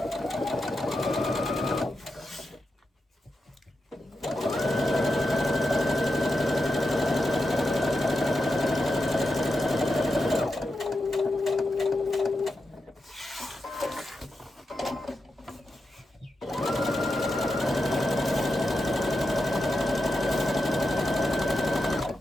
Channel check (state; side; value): normal; both; correlation 0.88